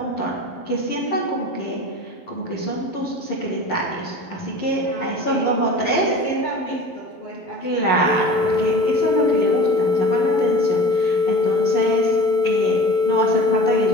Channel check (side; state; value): right; late; 12 ms